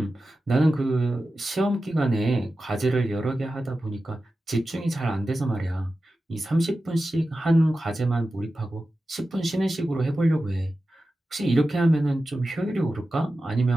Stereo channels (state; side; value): normal; both; correlation 0.93